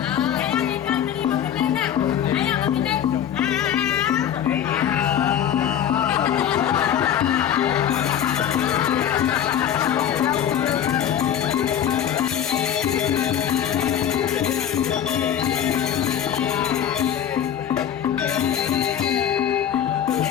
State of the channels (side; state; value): right; quieter; 9.7 dB